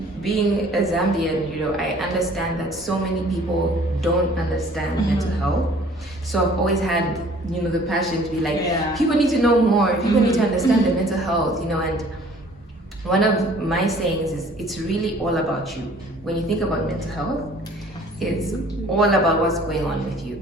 being a Zambian, I understand that so many people don't understand mental health. So I've always had, the passion to be people need to know more, people need to understand their mental health, and one of my sayings is, it's really all about you. When you think about mental health, it's all about what's going on with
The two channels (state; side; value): normal; both; correlation 0.53